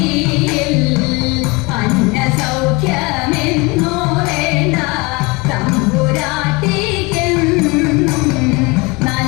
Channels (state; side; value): quieter; right; 26.3 dB